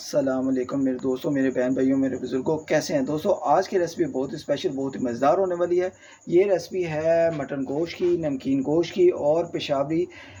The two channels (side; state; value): both; identical; correlation 1.00